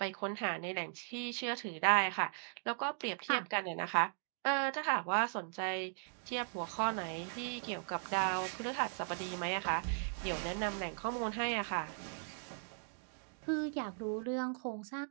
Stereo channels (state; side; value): silent; left; digital silence